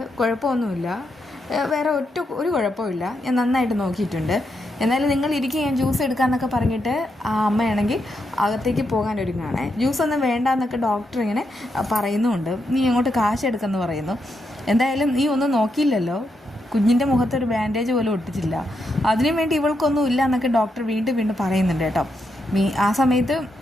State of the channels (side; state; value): both; normal; correlation 0.82